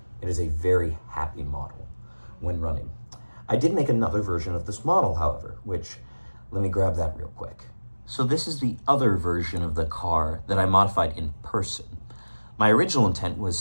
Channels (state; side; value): inverted; both; correlation -1.00